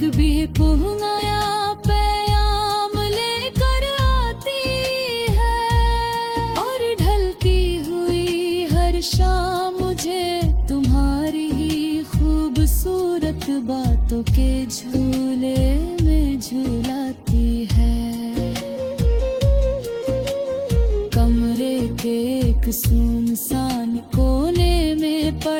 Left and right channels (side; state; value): both; identical; correlation 1.00